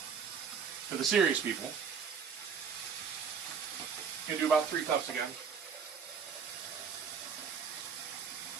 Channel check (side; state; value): left; quieter; 6.5 dB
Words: For the serious people, you can do about 3 cups again.